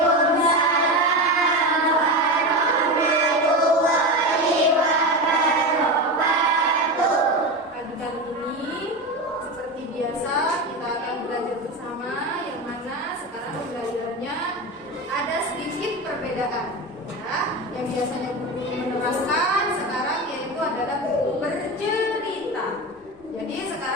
warahmatullahi wabarakatuh. Pagi kali ini seperti biasa kita akan belajar bersama, yang mana sekarang belajarnya ada sedikit perbedaan. Ya, yang biasanya buku menerangkan sekarang yaitu adalah buku bercerita. Jadi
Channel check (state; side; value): normal; both; correlation 0.21